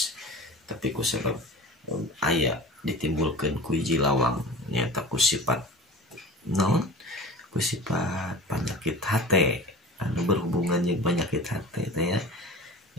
tapi kusabab aya ditimbulkeun ku hiji lawang nyata kusifat penyakit hate anu berhubungan jeung penyakit hate teh ya.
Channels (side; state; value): both; normal; correlation 0.36